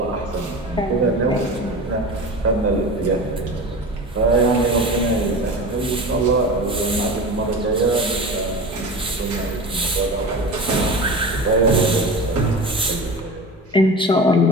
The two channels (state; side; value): normal; both; correlation 0.31